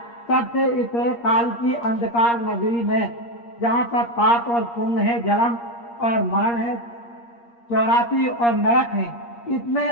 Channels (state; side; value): late; right; 8.5 ms